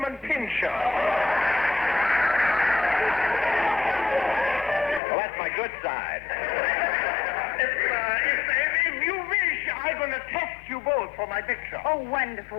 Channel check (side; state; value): right; drops out; at 5.0 s